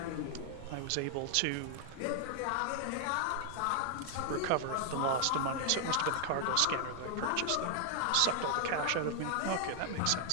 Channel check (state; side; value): different; both; correlation 0.00